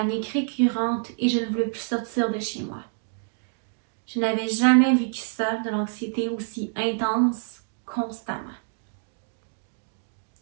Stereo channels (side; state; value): left; silent; digital silence